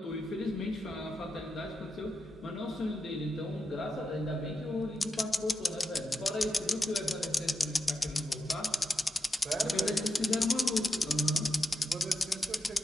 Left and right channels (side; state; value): both; normal; correlation 0.87